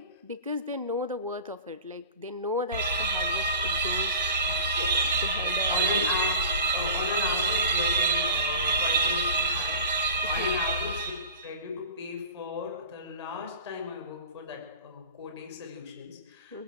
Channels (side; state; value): both; inverted; correlation -0.37